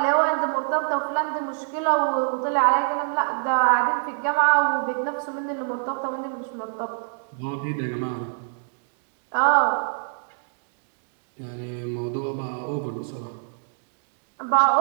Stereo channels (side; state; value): left; silent; digital silence